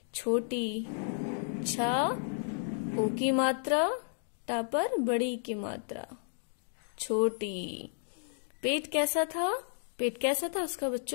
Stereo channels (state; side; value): silent; right; digital silence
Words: छोटी। छा ओ की मात्रा, टा पर बड़ी की मात्रा, छोटी। पेट कैसा था? पेट कैसा था उसका